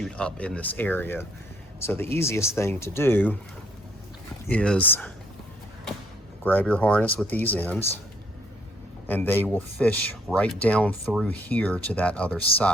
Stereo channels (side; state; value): both; normal; correlation 0.67